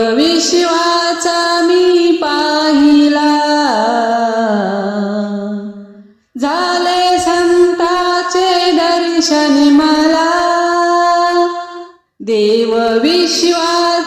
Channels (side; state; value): both; identical; correlation 1.00